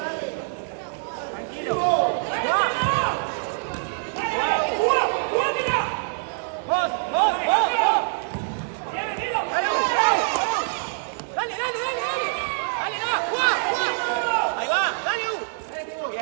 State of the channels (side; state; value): left; silent; digital silence